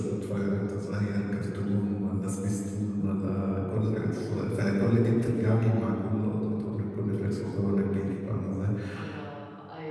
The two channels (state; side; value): identical; both; correlation 1.00